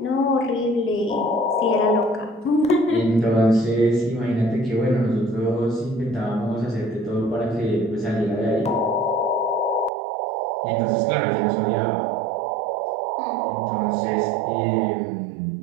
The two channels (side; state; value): left; drops out; at 9.9 s